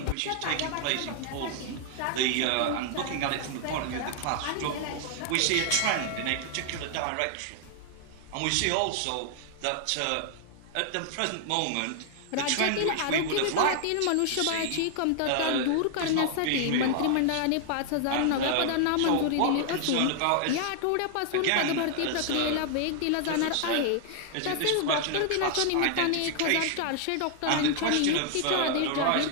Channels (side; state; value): both; different; correlation 0.00